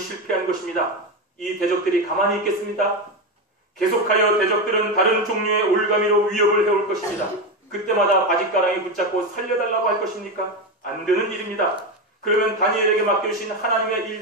것입니다. 이 대적들이 가만히 있겠습니까? 계속하여 대적들은 다른 종류의 올가미로 위협을 해올 것입니다. 그때마다 바짓가랑이 붙잡고 살려달라고 할 것입니까? 안 되는 일입니다. 그러면 다니엘에게 맡겨주신 하나님의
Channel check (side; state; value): both; normal; correlation 0.14